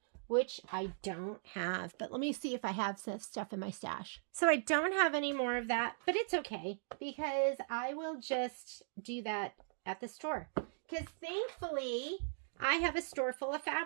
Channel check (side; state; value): left; silent; digital silence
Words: which I don't have. But let me see if I have some stuff in my stash. So I don't have any more of that, but it's okay because I will just do that at the store. Because thankfully, I have a store full of